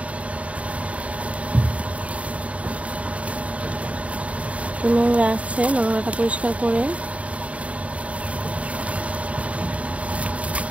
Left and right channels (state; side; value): late; left; 0.065 ms